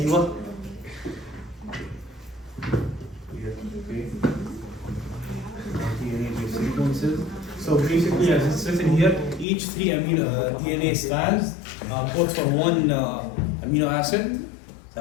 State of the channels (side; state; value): right; drops out; at 9.5 s